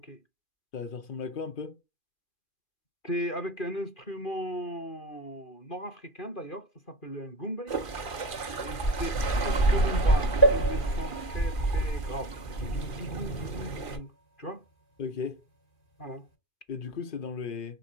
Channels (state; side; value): late; right; 2.4 ms